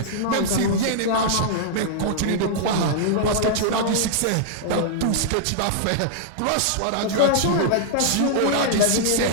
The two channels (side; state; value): both; different; correlation -0.01